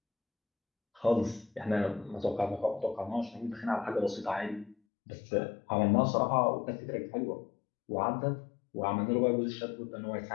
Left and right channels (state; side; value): drops out; right; at 4.8 s